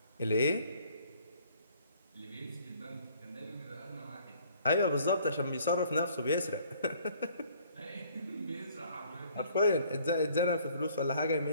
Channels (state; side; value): inverted; both; correlation -0.59